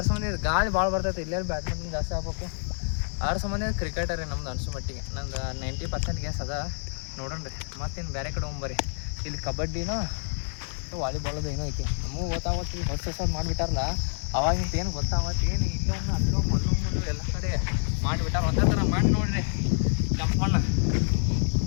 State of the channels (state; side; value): silent; right; digital silence